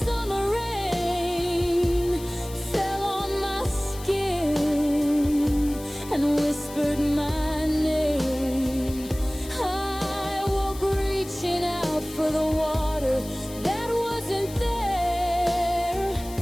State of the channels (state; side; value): noise; left; hiss, 16 dB below the sound